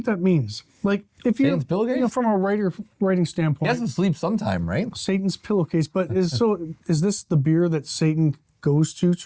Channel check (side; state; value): both; identical; correlation 1.00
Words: that means? Like, if you, Satan's Pillowcase? From a writing standpoint, He has to sleep sometime, right? Satan's Pillowcase, but is this the beer that Satan goes to